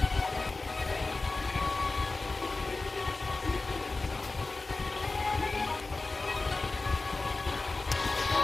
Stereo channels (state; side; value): quieter; right; 3.5 dB